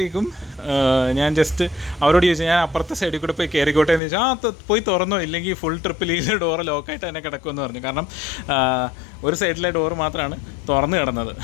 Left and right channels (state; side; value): drops out; right; at 4.0 s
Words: ഞാൻ ജസ്റ്റ് അവരോട് ചോദിച്ചു, ഞാൻ അപ്പുറത്തെ സൈഡിൽ കൂടെ പോയി കയറിക്കോട്ടെ എന്ന് ചോദിച്ചാൽ പോയി തുറന്നോ, ഇല്ലെങ്കിൽ ഫുൾ ട്രിപ്പിൽ ഈ ഡോറ് ലോക്കായിട്ട് തന്നെ കിടക്കുമെന്ന് പറഞ്ഞു. കാരണം ഒരു സൈഡിലെ ഡോറ് മാത്രമാണ് തുറന്ന് കിടന്നത്.